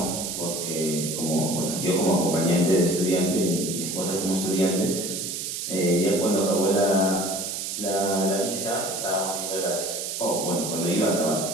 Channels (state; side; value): noise; right; hiss, 4 dB below the sound